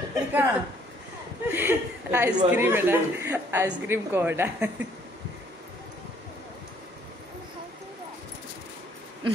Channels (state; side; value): normal; both; correlation 0.63